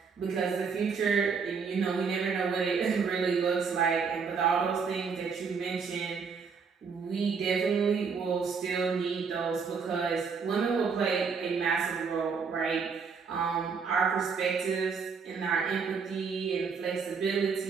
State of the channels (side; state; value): left; quieter; 5.6 dB